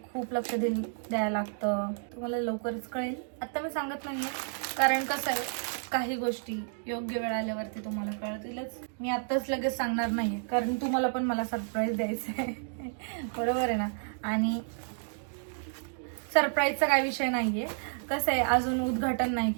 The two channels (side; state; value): left; silent; digital silence